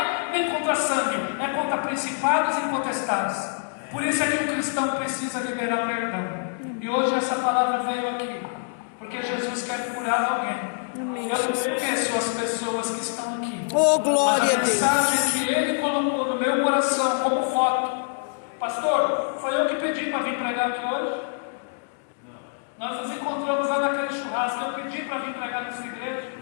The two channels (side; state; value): right; silent; digital silence